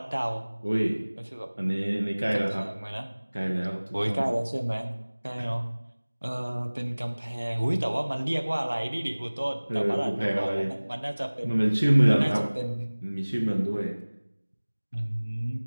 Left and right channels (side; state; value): both; inverted; correlation -1.00